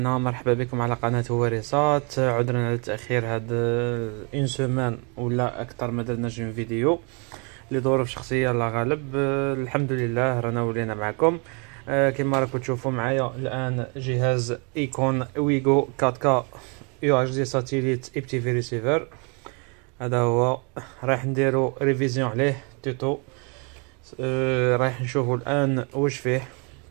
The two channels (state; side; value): quieter; left; 34.8 dB